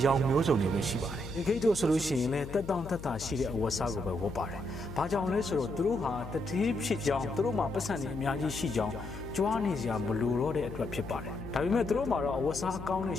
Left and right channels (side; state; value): left; noise; hum, 12 dB below the sound